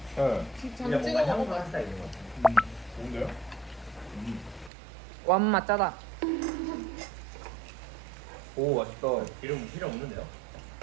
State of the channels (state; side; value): drops out; left; at 4.7 s